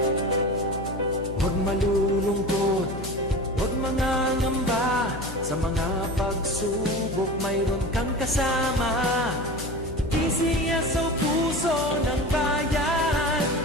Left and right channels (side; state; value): left; noise; hum, 9 dB below the sound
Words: Huwag malulungkot, huwag mangangamba. Sa mga pagsubok mayroon kang kasama. PCSO, puso ng bayan,